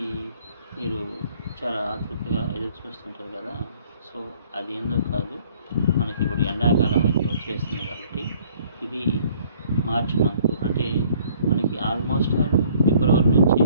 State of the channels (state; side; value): inverted; both; correlation -0.59